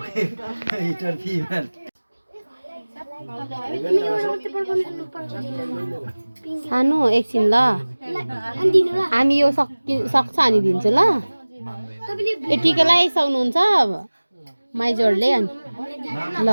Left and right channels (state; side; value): inverted; both; correlation -1.00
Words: हिटर फिमेल सानो एकछिन ल हामी यो सक्छ अनि दिन्छु ल ए टिका लगाइसक्नुहुन्छ माइजोरले अनि ल